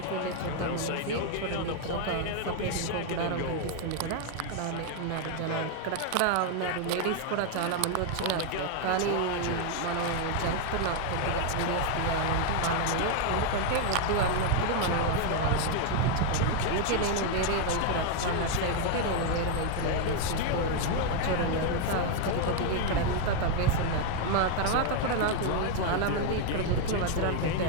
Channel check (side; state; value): both; different; correlation 0.00